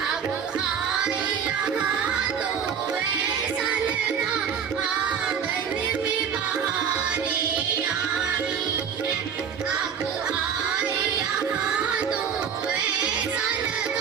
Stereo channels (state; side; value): quieter; left; 7.4 dB